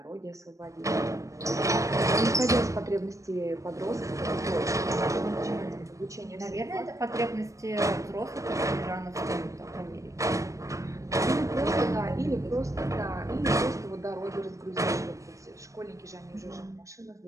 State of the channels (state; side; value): late; left; 0.15 ms